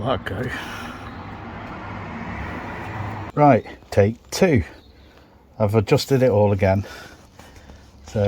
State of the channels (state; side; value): identical; both; correlation 1.00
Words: that go. Right, take two. I've adjusted it all again, so